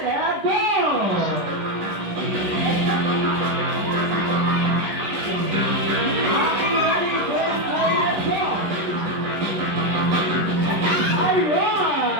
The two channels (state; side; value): late; left; 11 ms